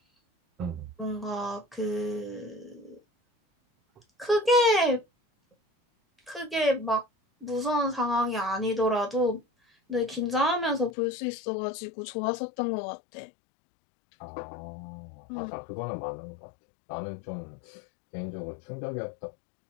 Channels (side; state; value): right; drops out; at 10.9 s